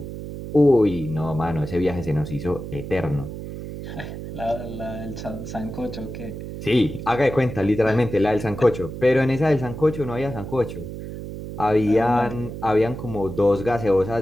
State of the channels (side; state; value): right; noise; hum, 9 dB below the sound